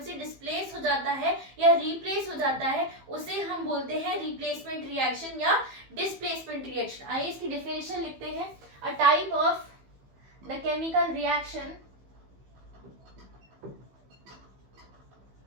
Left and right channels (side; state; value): left; late; 15 ms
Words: से डिस्प्लेस हो जाता है या रिप्लेस हो जाता है, उसे हम बोलते हैं रिप्लेसमेंट रिएक्शन या डिस्प्लेसमेंट रिएक्शन। आइए इसकी डेफिनेशन लिखते हैं। अ type of the chemical reaction